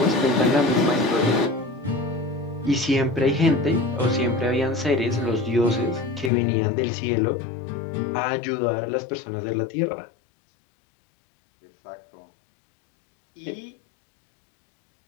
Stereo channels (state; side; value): drops out; right; at 6.3 s